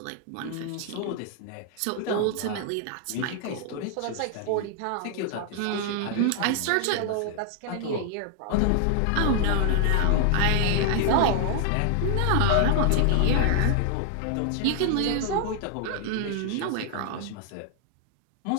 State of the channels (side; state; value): both; different; correlation 0.00